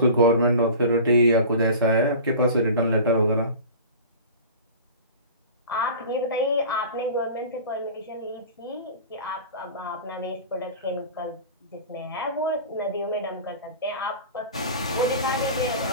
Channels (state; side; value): inverted; both; correlation -0.37